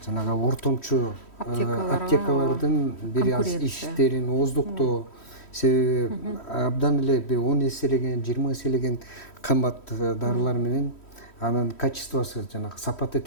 жанагы ортомчу аптекалардын бир аз иштерин ооздуктоо, себеби абдан эле 10 эселеген, 20 эселеген кымбат дарылар менен, анын качествосу, жанагы сапаты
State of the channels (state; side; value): late; right; 3.1 ms